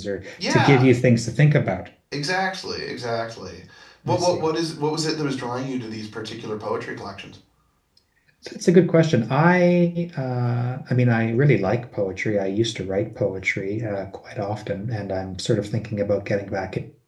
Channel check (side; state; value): both; identical; correlation 1.00